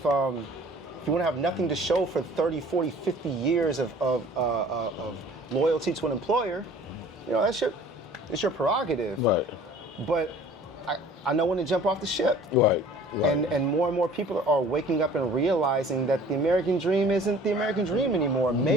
you want to have nothing to show for 30, 40, 50 years of loyalty to an employer, it's your prerogative. Right. But I know when to jump off the ship. Right. Right. And more people are waking up and realizing that the American dream isn't the American dream anymore.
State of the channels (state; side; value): normal; both; correlation 0.49